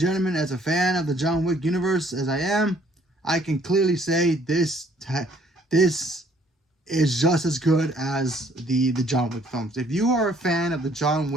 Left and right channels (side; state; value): both; normal; correlation 0.62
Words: as a fan of the John Wick universe as I am, I can clearly say this is just as good as the John Wick films. If you are a fan of the John